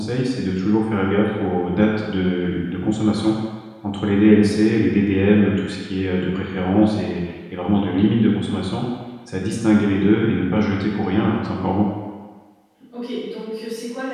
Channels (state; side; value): identical; both; correlation 1.00